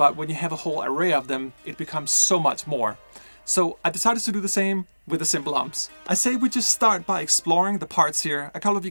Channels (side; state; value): both; inverted; correlation -1.00